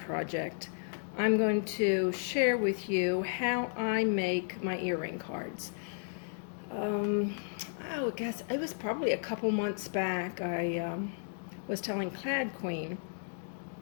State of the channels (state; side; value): silent; right; digital silence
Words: I'm going to share with you how I make my earring cards. I guess it was probably a couple months back. I was telling Clad Queen